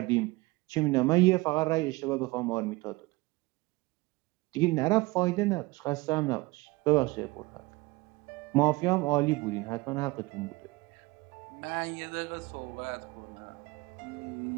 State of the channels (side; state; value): left; quieter; 22.3 dB